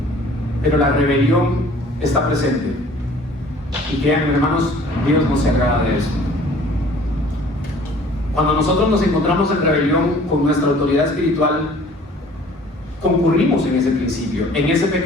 pero la rebelión está presente. Y créanme, hermanos, Dios no se agrada de eso. Cuando nosotros nos encontramos en rebelión con nuestra autoridad espiritual, concurrimos en ese principio, en ese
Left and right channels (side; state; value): both; normal; correlation 0.51